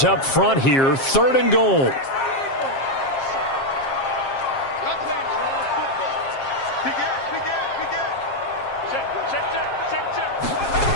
up front here, 3rd and goal.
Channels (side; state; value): right; late; 7.5 ms